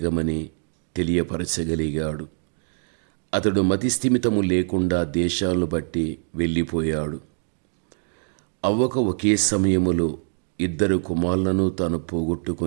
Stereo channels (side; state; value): left; silent; digital silence